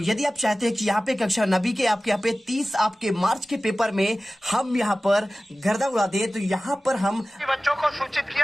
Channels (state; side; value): normal; both; correlation 0.97